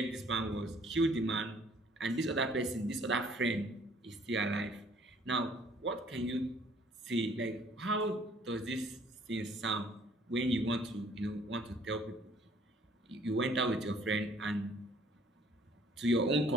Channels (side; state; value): both; normal; correlation 0.59